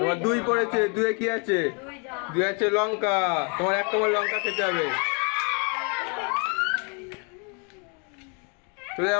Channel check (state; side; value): quieter; right; 36.0 dB